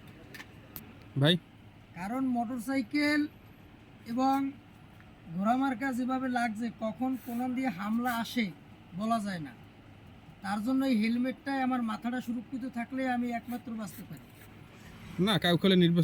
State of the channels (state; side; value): identical; both; correlation 1.00